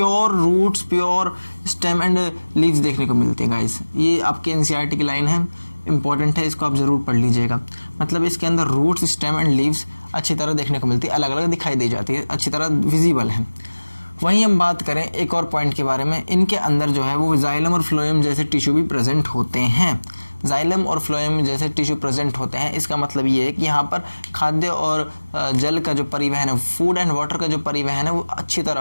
roots, pure stem and leaves देखने को मिलते हैं गाइस। ये आपके एनसीईआरटी की लाइन है, इंपॉर्टेंट है, इसको आप ज़रूर पढ़ लीजिएगा। मतलब इसके अंदर रूट्स, स्टेम एंड लीव्स अच्छी तरह देखने को मिलती है, अलग अलग दिखाई दी जाती है, अच्छी तरह विजिबल है। वहीं हम बात करें एक और पॉइंट के बारे में, इनके अंदर जो है वो जाइलम और फ्लोएम जैसे टिश्यू भी प्रेजेंट होते हैं। जाइलम और फ्लोएम जैसे टिश्यू प्रेजेंट होते हैं, इसका मतलब ये है कि यहाँ पर खाद्य और जल का जो परिवहन है, फूड एंड वाटर का जो परिवहन है वो अच्छी तरह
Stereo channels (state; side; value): inverted; both; correlation -1.00